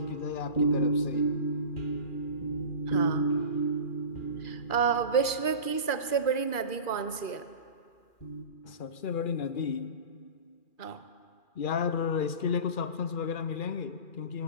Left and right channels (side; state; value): right; late; 2.4 ms